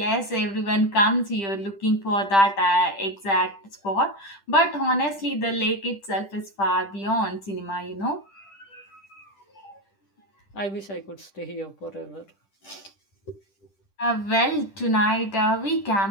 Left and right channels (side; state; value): right; late; 10 ms